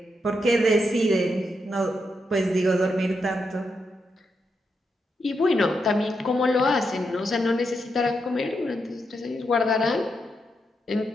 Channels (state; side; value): normal; both; correlation 0.83